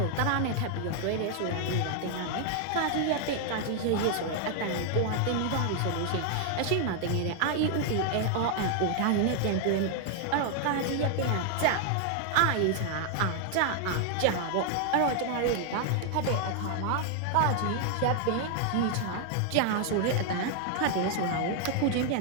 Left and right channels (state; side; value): different; both; correlation 0.00